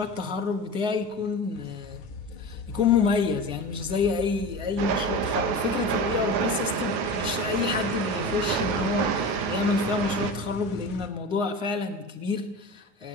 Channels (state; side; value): late; left; 9.7 ms